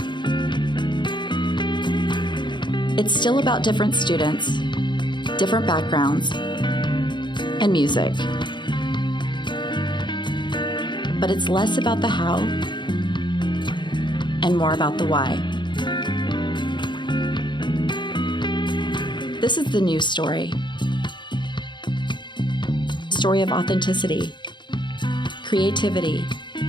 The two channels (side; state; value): right; late; 0.22 ms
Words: It's still about different students, different backgrounds, and music. But it's less about the how and more about the why. This is the new story. Story of authenticity, creativity,